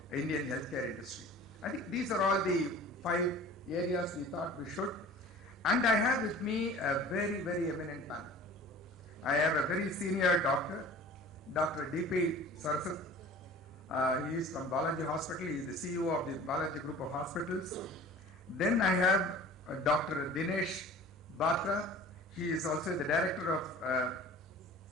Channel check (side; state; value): both; normal; correlation 0.43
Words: Indian healthcare industry. I think these are all the 5 areas we thought we should. And I have with me a very, very eminent panel. I have a very senior doctor, Dr. D.P. Sarasat. He is from Balaji Hospital. He is the CEO of the Balaji Group of Hospitals. Then I have Dr. Dinesh Batra. He is also the director of